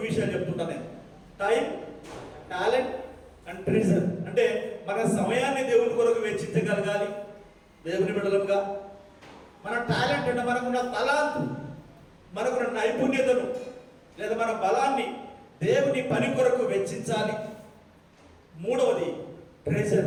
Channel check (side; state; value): both; identical; correlation 1.00